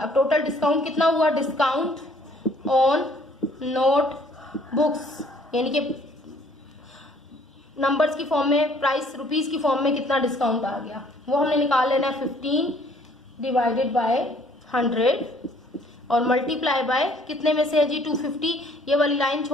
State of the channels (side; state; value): both; normal; correlation 0.59